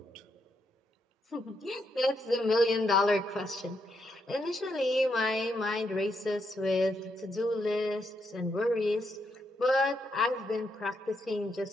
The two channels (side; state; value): both; normal; correlation 0.79